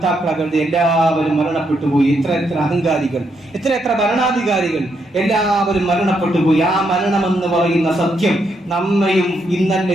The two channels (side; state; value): both; normal; correlation 0.78